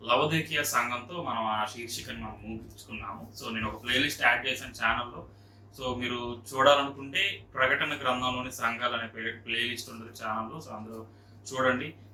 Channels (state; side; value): identical; both; correlation 1.00